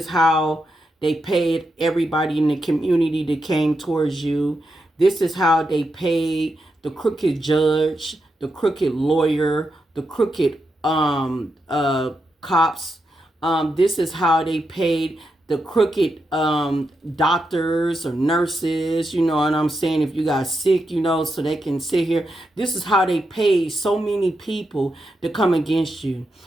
how they paid everybody in the community that came towards you. This is how they paid the crooked judge, the crooked lawyer, the crooked cops. This is how they paid the crooked doctors or nurses, you know what I'm saying, if you got sick, you know, so they can sit here. This is how they paid so many people to come against you.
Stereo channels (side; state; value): both; normal; correlation 0.85